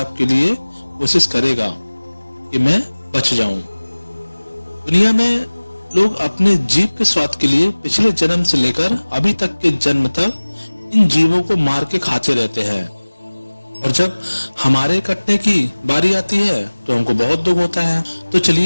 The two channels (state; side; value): inverted; both; correlation -1.00